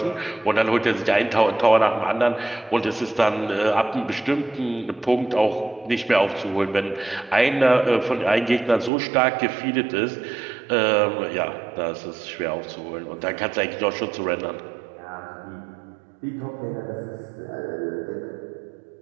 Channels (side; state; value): left; drops out; at 8.9 s